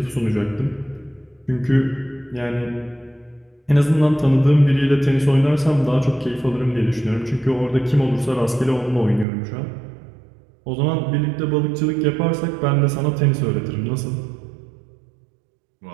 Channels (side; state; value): left; drops out; at 9.2 s